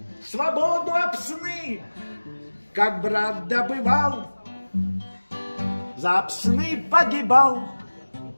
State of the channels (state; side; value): inverted; both; correlation -1.00